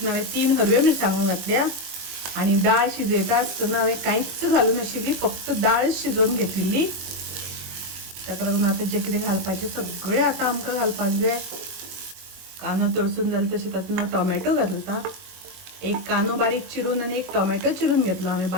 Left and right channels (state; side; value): late; left; 22 ms